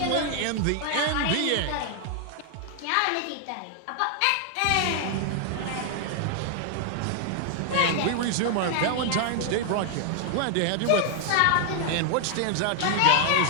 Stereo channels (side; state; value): both; different; correlation 0.00